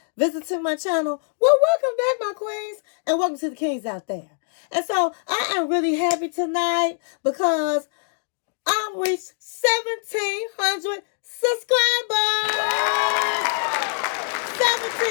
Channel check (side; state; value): right; silent; digital silence